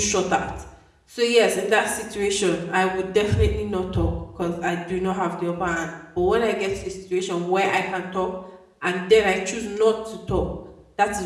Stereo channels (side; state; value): both; identical; correlation 1.00